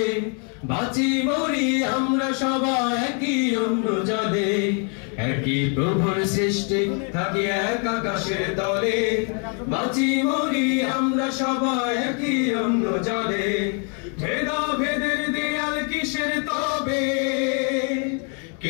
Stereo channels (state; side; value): quieter; right; 39.3 dB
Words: বাঁচি মরি আমরা সবাই একই অন্য জলে। একই প্রভুর সৃষ্টি থাকি এক আকাশের তলে, বাঁচি মরি আমরা সবাই একই অন্য জলে। ভেদাভেদের দেয়াল কিসের তবে,